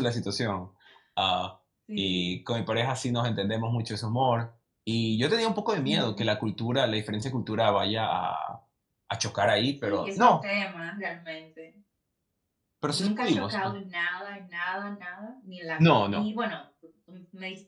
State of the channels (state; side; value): identical; both; correlation 1.00